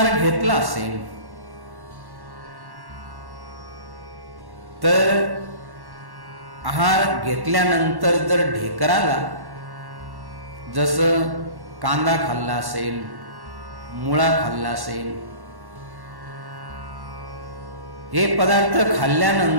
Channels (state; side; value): late; left; 1.1 ms